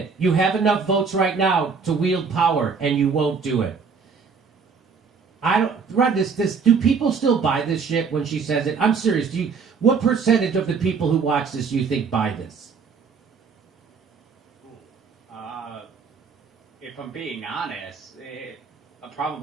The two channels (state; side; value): quieter; left; 5.5 dB